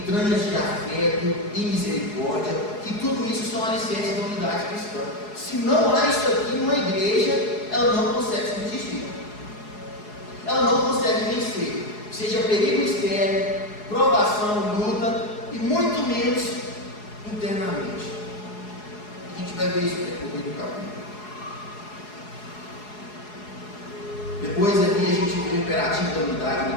de afeto e misericórdia, que tudo isso são alicerces da unidade cristã. Se não há isso aqui numa igreja, ela não consegue subsistir. Ela não consegue vencer, seja perigo externo, provação, luta, e muito menos internamente. A gente vai ver isso no decorrer do capítulo. Depois ali a gente vê o imperativo da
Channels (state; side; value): late; right; 4.8 ms